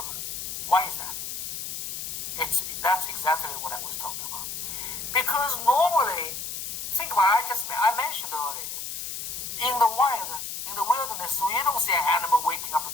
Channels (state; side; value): noise; left; hiss, 6 dB below the sound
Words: Why is that? That's exactly what I was talking about. Because normally, think about it, I mentioned earlier, in the wild, in the wilderness, you don't see an animal waking up